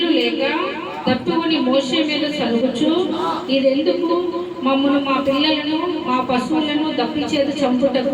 లేక తప్పుకొని మోషే మీద సలుగుచు, ఇదెందుకు? మమ్మను, మా పిల్లలను, మా పశువులను దప్పిచేత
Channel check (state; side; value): identical; both; correlation 1.00